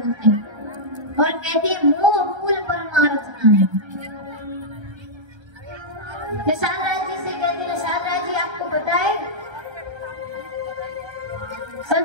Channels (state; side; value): late; left; 1.3 ms